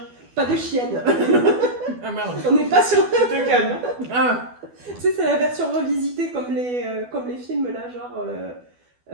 Pas de chienne. Ah merde. On n'est pas sur... Tu te calmes. Ah. Tu sais, c'est la version revisitée comme les films là, genre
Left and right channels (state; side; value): late; left; 12 ms